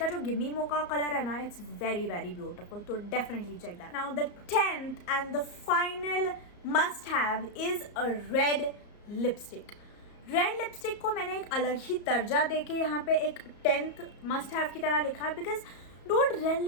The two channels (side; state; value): right; late; 34 ms